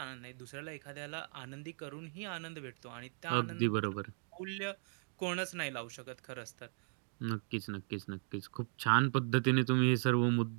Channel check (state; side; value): silent; left; 53 dB below the other